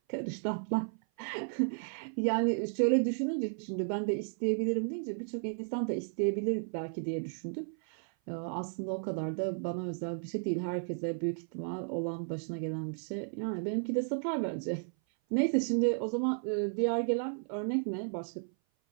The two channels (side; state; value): left; silent; 55 dB below the other